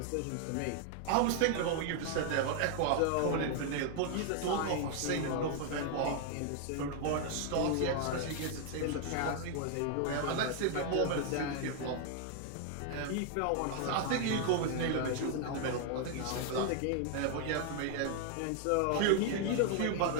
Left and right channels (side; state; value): both; different; correlation 0.00